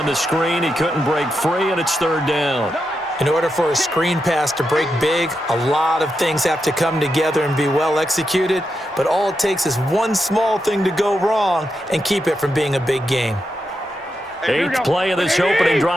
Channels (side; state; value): both; normal; correlation 0.86